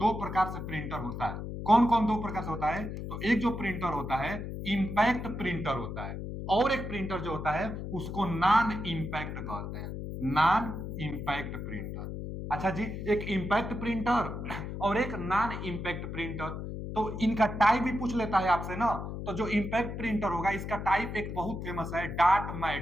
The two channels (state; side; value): noise; left; hum, 6 dB below the sound